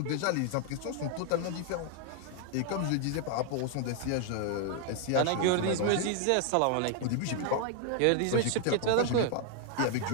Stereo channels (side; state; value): both; different; correlation 0.00